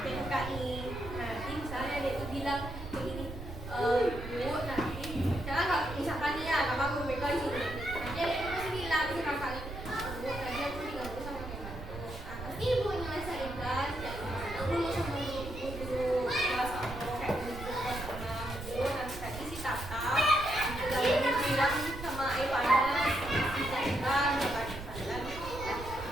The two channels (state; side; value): noise; right; rumble, 10 dB below the sound